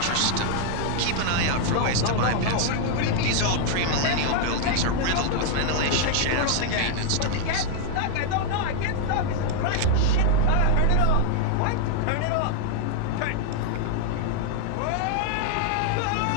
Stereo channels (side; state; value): both; different; correlation -0.01